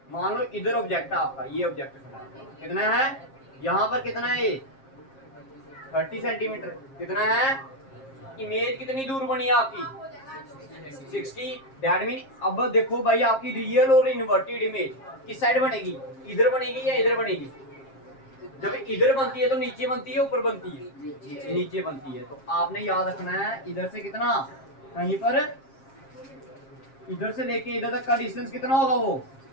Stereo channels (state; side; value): late; right; 7.5 ms